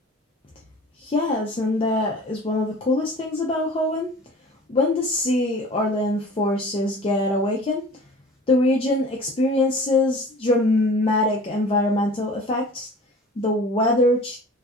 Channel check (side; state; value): both; normal; correlation 0.43